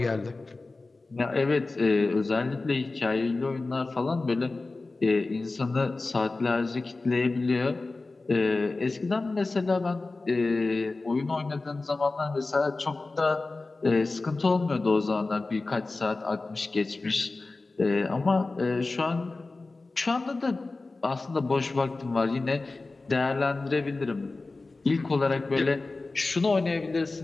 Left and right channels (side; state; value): right; quieter; 3.4 dB